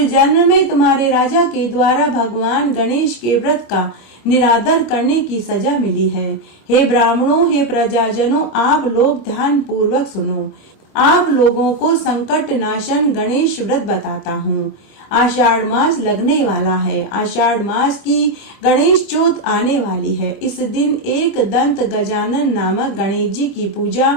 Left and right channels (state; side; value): late; right; 25 ms